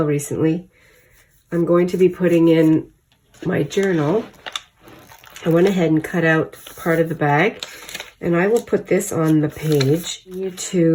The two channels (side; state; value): both; identical; correlation 1.00